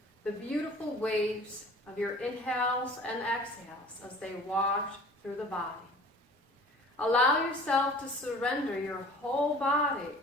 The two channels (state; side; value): normal; both; correlation 0.46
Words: the beautiful waves of your inhales and exhales as they wash through the body. Allow yourself to surrender your whole body